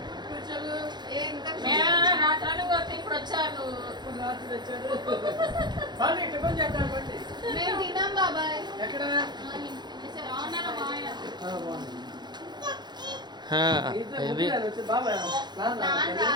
రాత్రాలు కొట్టి ఇప్పుడు వచ్చాను. మేము తిన్నాం బాబాయ్. ఎక్కడ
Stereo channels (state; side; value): late; left; 0.21 ms